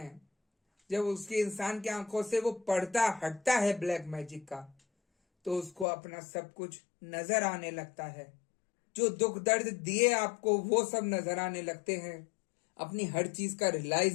जब उसके इंसान की आंखों से वो पर्दा हटता है ब्लैक मैजिक का, तो उसको अपना सब कुछ नजर आने लगता है। जो दुख दर्द दिए आपको वो सब नजर आने लगते हैं, अपनी हर चीज का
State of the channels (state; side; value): drops out; right; at 5.9 s